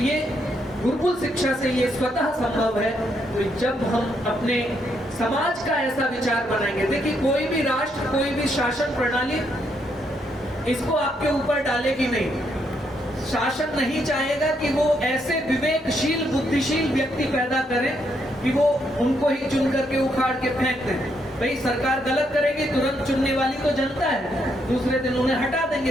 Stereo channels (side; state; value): both; normal; correlation 0.76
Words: गुरुकुल शिक्षा से ये स्वतः संभव है। तो जब हम अपने समाज का ऐसा विचार बनाएंगे, देखिए कोई भी राष्ट्र, कोई भी शासन प्रणाली इसको आपके ऊपर डालेगी नहीं। शासन नहीं चाहेगा कि वो ऐसे विवेकशील बुद्धिशील व्यक्ति पैदा करें कि वो उनको ही चुन करके उखाड़ के फेंक दें। भाई सरकार गलत करेगी, तुरंत चुनने वाली तो जनता है, दूसरे दिन उन्हें हटा देंगे